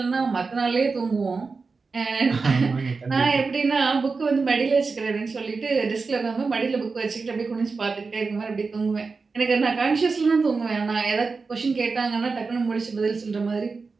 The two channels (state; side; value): quieter; left; 4.4 dB